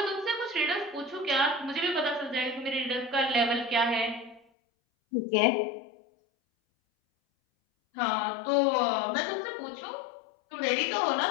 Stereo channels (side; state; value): right; drops out; at 4.4 s